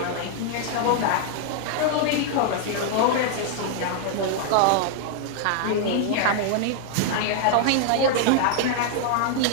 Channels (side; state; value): both; different; correlation 0.00